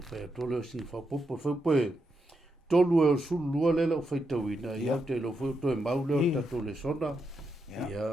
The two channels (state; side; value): normal; both; correlation 0.83